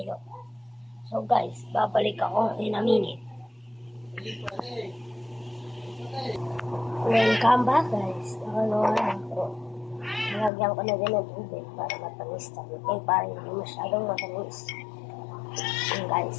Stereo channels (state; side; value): drops out; right; at 10.5 s